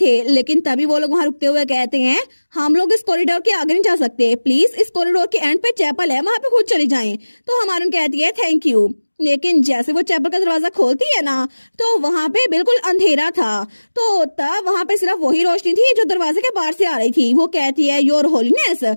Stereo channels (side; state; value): both; inverted; correlation -1.00